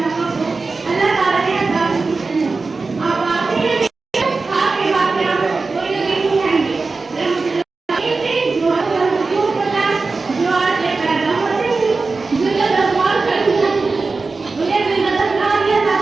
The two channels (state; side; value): quieter; left; 4.0 dB